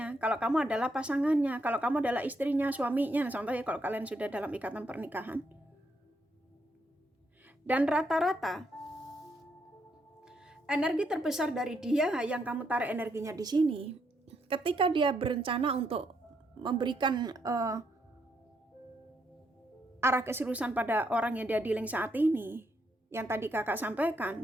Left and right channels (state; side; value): normal; both; correlation 0.77